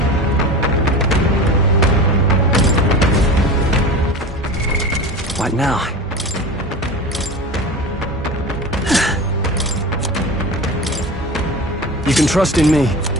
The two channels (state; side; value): normal; both; correlation 0.31